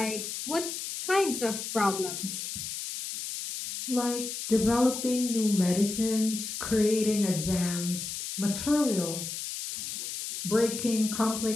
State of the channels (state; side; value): noise; left; hiss, 6 dB below the sound